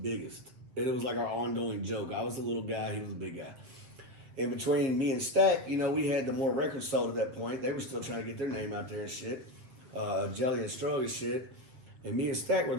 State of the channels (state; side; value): late; left; 7.9 ms